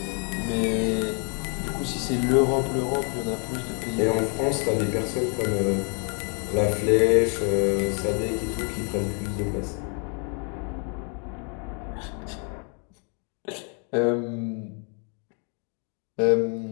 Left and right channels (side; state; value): right; quieter; 39.0 dB